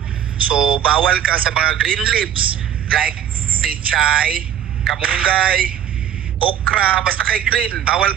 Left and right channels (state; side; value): quieter; left; 10.1 dB